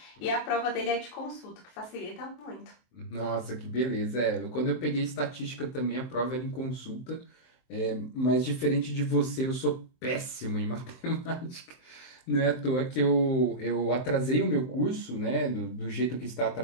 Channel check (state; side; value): late; right; 23 ms